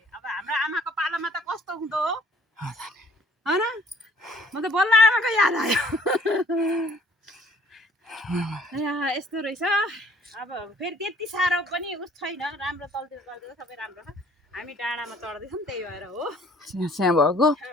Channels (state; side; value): normal; both; correlation 0.56